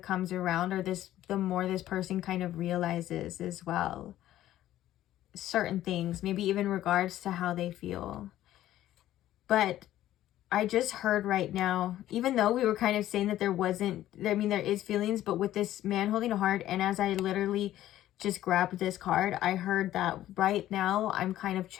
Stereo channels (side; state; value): right; quieter; 13.4 dB